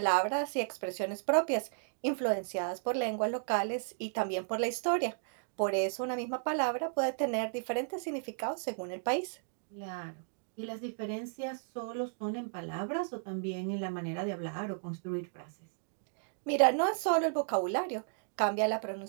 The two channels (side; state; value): left; silent; digital silence